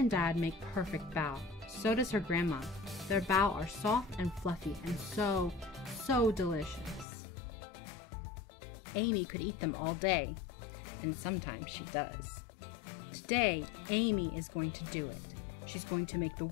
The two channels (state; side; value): drops out; right; at 7.1 s